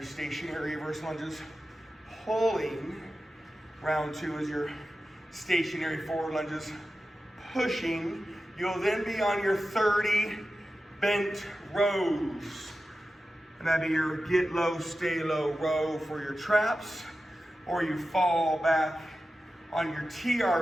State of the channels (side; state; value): both; normal; correlation 0.93